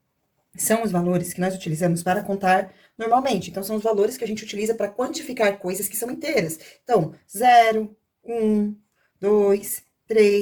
são os valores que nós utilizamos para contar normalmente. Então, são os valores que a gente utiliza para quantificar coisas que são inteiras. Então, 0, 1, 2,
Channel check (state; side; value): identical; both; correlation 1.00